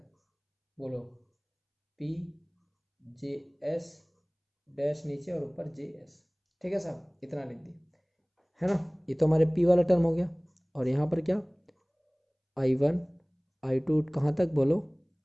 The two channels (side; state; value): both; identical; correlation 1.00